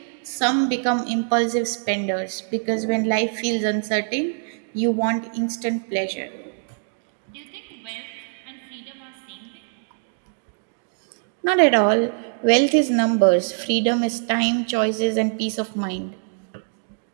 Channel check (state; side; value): silent; left; digital silence